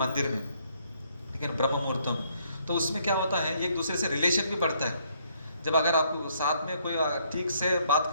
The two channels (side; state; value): both; inverted; correlation -0.69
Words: में, लेकिन ब्रह्म मुहूर्तम। तो उसमें क्या होता है, एक दूसरे से रिलेशन भी बढ़ता है। जब अगर आपको साथ में कोई ठीक से बात